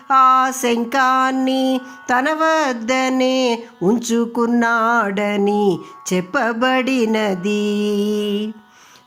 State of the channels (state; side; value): identical; both; correlation 1.00